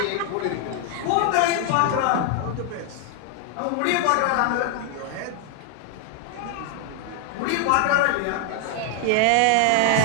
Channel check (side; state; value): both; different; correlation 0.00